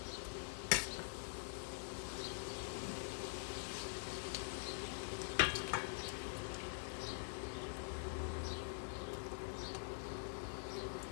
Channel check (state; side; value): silent; right; digital silence